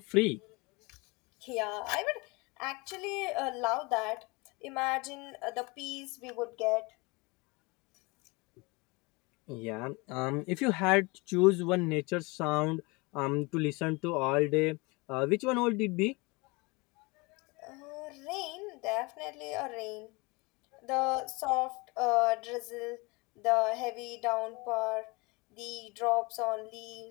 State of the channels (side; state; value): right; quieter; 26.4 dB